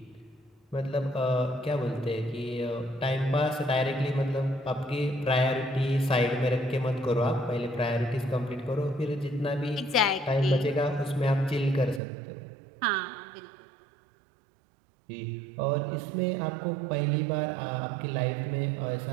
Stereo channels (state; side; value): drops out; left; at 12.0 s